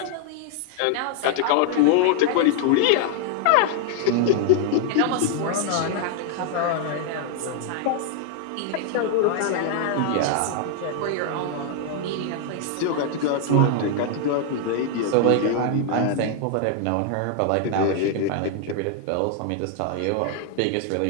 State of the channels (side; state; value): both; different; correlation -0.01